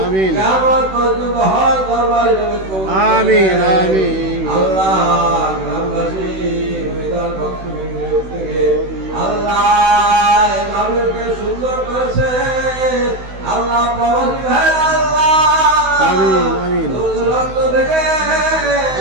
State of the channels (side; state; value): left; late; 16 ms